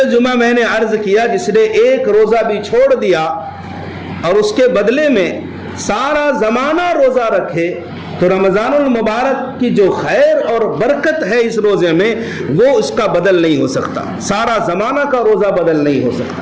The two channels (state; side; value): identical; both; correlation 1.00